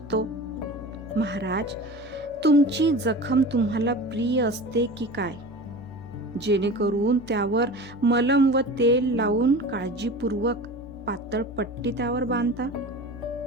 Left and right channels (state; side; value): normal; both; correlation 0.35